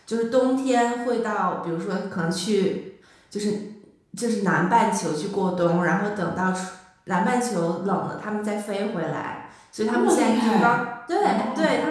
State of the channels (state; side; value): identical; both; correlation 1.00